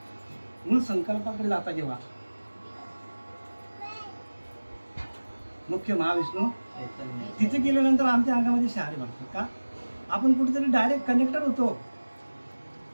संकल्पाकडे जाता, जेव्हा मुख्य महाविष्णू तिथे गेल्यानंतर आमच्या अंगामध्ये शहारे वाटतात का आपण कुठेतरी डायरेक्ट कनेक्टेड होतो.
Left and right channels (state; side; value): inverted; both; correlation -1.00